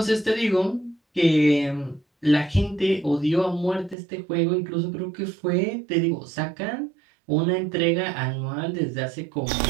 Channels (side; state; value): left; drops out; at 4.0 s